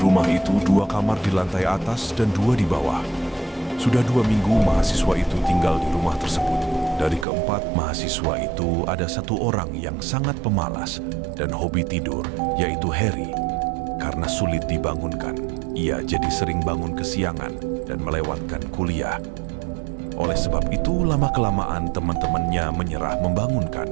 itu, 2 kamar di lantai atas dan 2 di bawah. Sudah 2 minggu mahasiswa itu tinggal di rumah tersebut. Dari keempat mahasiswa itu ada 1 orang yang sangat pemalas dan hobi tidur, yaitu Harry. Karena sulit dibangunkan, ia jadi sering bangun kesiangan dan melewatkan kuliah. Oleh sebab itu, lama-kelamaan teman-temannya menyerah membangunkan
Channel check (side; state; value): left; drops out; at 7.2 s